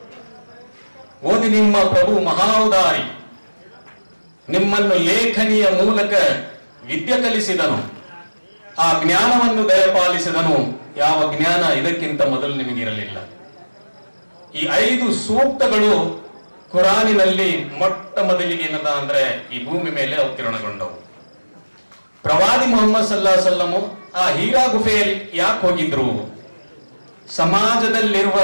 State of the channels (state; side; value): inverted; both; correlation -1.00